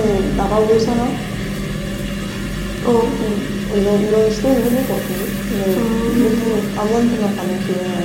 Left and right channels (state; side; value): identical; both; correlation 1.00